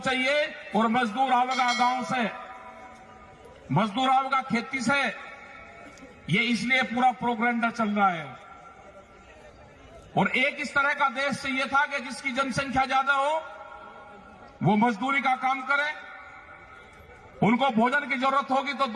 चाहिए और मजदूर आवेगा गांव से, मजदूर आवेगा खेती से। ये इसलिए पूरा प्रोग्राम चल रहा है। और एक इस तरह का देश चाहिए था कि जिसकी जनसंख्या ज्यादा हो, वो मजदूरी का काम करे। उनको भोजन की जरूरत होगी तो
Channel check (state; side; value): identical; both; correlation 1.00